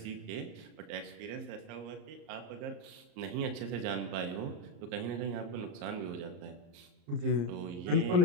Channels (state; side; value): late; left; 34 ms